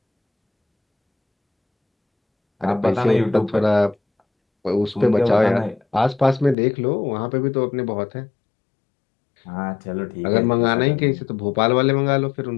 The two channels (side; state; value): right; drops out; at 6.6 s